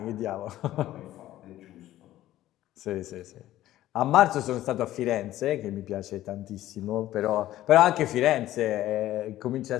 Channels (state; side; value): quieter; right; 14.2 dB